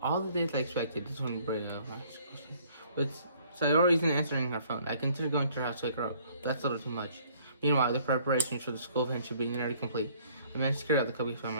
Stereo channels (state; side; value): inverted; both; correlation -0.60